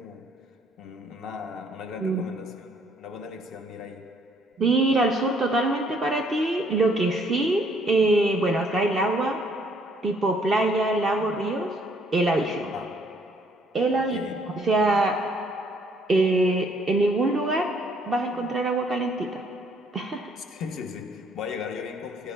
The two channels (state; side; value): normal; both; correlation 0.65